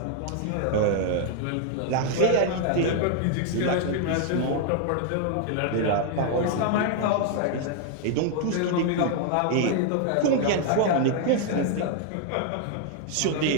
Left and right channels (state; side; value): different; both; correlation 0.00